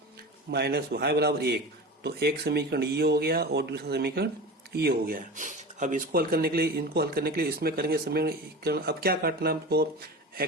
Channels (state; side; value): normal; both; correlation 0.31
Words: माइनस वाई बराबर 1। तो एक समीकरण ये हो गया और दूसरा समीकरण ये हो गया। अब इसको हल करने के लिए, इनको हल करने के लिए इसमें करेंगे समीकरण। अब क्या काटना हमको,